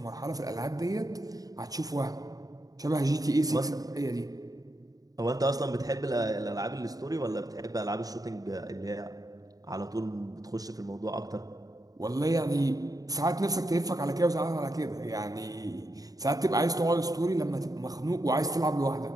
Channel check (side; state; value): left; late; 0.18 ms